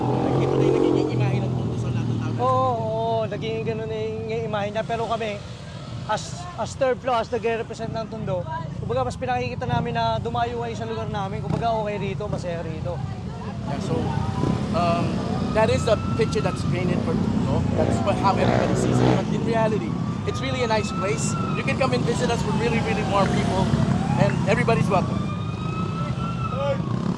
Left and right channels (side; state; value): both; identical; correlation 1.00